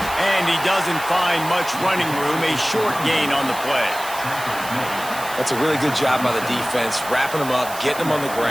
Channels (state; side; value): noise; right; hiss, 12 dB below the sound